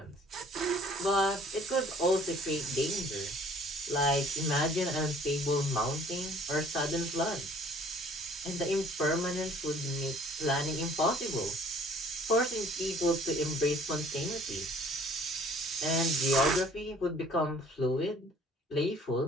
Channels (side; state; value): both; normal; correlation 0.54